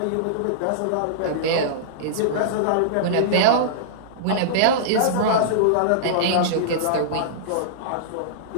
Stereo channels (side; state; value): both; different; correlation -0.03